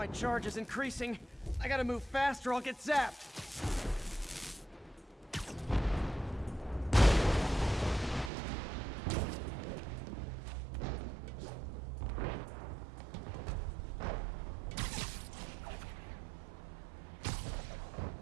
charge is increasing. I gotta move fast or I'll get zapped.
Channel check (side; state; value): left; drops out; at 8.3 s